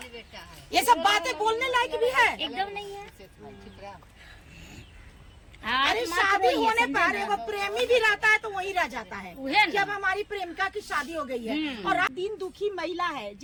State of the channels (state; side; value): identical; both; correlation 1.00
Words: ये सब बातें बोलने लायक भी है, एकदम नहीं है। अरे शादी होने पर एगो प्रेमी भी रहता है तो वही रह जाता है कि अब हमारी प्रेमिका की शादी हो गई है। और दिन दुखी महिला है